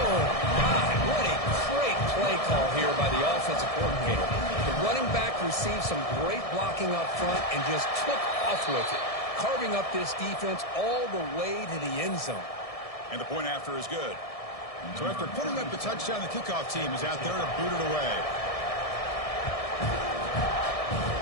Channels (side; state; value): right; late; 1.7 ms